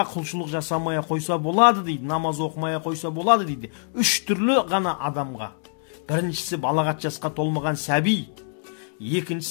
құлшылық жасамaya қойса болады дейді, намаз оқымaya қойса болады дейді. Үш түрлі ғана адамға. Біріншісі балағат жасқа толмаған сәби,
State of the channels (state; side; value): silent; right; digital silence